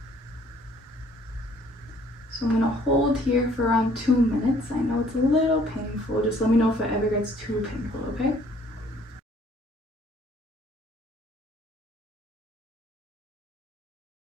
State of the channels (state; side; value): normal; both; correlation 0.59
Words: So I'm gonna hold here for around 2 minutes. I know it's a little painful. Just let me know if it ever gets too painful, okay?